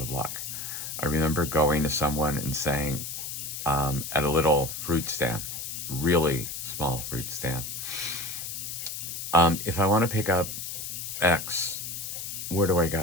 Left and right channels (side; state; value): left; noise; hiss, 6 dB below the sound